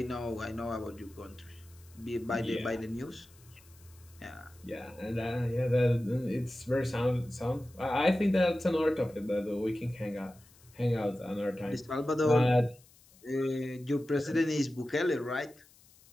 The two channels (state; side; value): noise; left; hiss, 27 dB below the sound